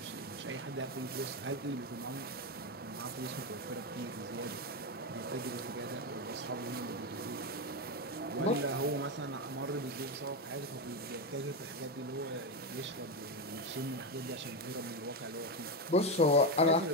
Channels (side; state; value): both; normal; correlation 0.11